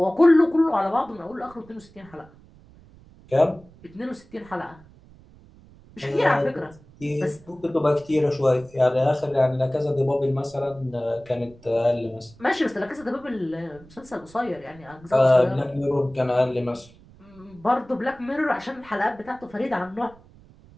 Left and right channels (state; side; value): noise; right; rumble, 24 dB below the sound